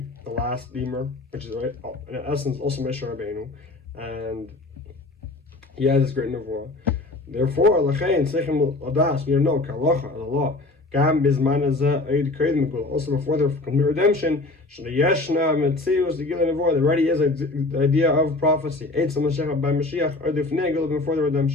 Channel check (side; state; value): right; quieter; 3.1 dB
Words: the last redeemer, which is right in essence also Moshe Rabbeinu, and he has this great nevuah. Therefore, Lachain Sechem Adas, we know Kalacha, the law. Gam Bizman also before the complete redemption, Yeshna Metzius, the Gilin Nevuah, there already is the idea of prophecy. Eitz Mashiach by Mashiach, or the Fnegel before the